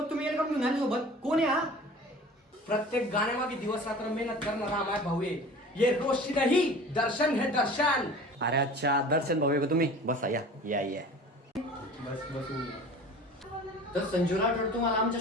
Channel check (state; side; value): normal; both; correlation 0.41